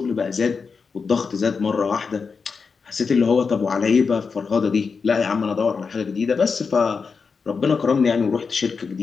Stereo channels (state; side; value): quieter; right; 5.2 dB